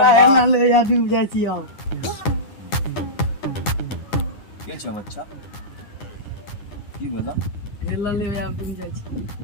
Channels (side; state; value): right; late; 9.8 ms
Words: ना ले या डूब जाय छी आओ के छ बच्चा की बोला हेला ले या डूब जाय छी